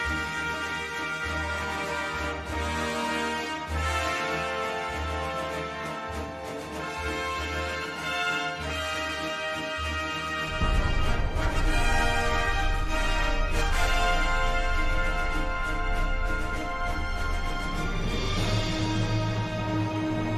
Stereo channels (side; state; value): both; identical; correlation 1.00